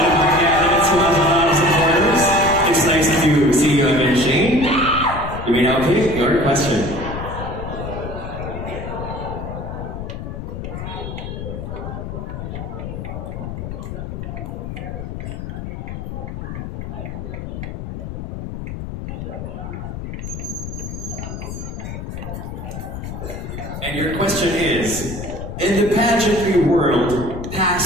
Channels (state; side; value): noise; left; rumble, 7 dB below the sound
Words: of our candidates who has a lot of supporters. It's nice to see you again, Shane. You may now pick your question. And your question is, in the pageantry world,